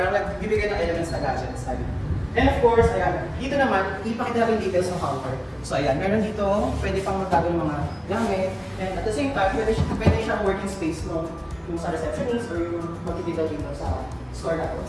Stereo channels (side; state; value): both; identical; correlation 1.00